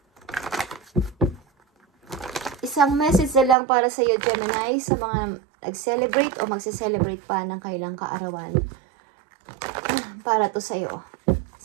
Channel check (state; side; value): drops out; left; at 3.6 s